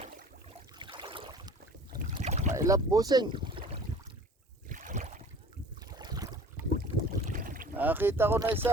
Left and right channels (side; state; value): both; normal; correlation 0.46